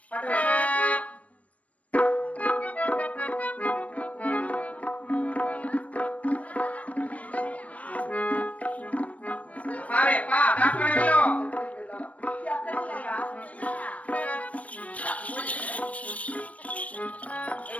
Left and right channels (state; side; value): late; right; 0.066 ms